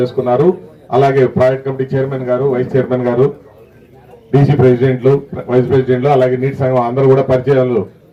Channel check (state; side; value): identical; both; correlation 1.00